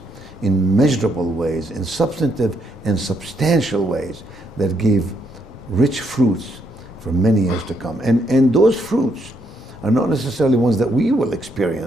in measurable ways, in substantive and substantial ways that give rich fruits for many years to come. And those fruits are not necessarily ones that we will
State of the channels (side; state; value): both; normal; correlation 0.74